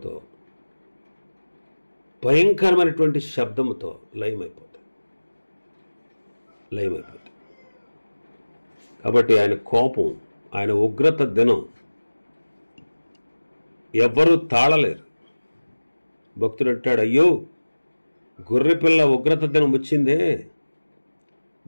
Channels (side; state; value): both; inverted; correlation -1.00